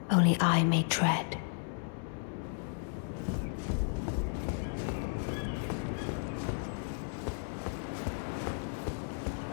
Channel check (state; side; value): silent; right; digital silence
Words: only I may tread.